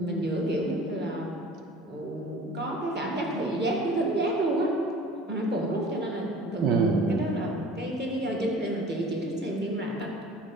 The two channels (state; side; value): normal; both; correlation 0.45